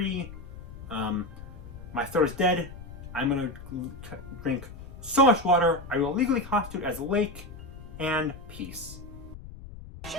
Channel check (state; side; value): noise; left; rumble, 14 dB below the sound